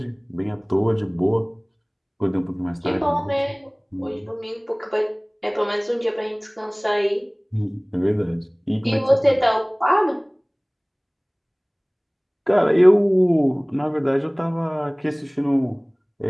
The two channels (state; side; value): identical; both; correlation 1.00